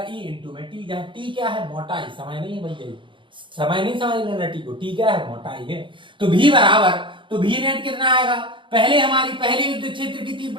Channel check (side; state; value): left; late; 0.24 ms